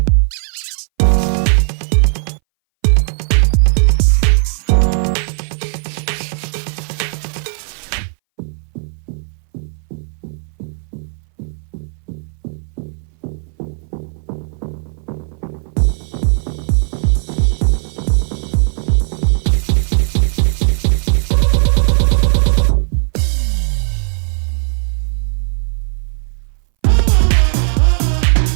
There goes our corner brick, 2x2. 2x3, 2x3. Then we're going to stick some, got a grill piece here that's going to go in the middle, and then we get a couple of 1x6 tiles and a 1x1. So 1x6 here, and the grill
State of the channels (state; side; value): silent; left; 64 dB below the other